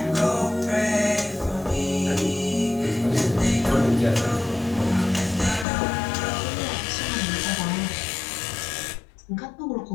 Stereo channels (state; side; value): drops out; right; at 5.7 s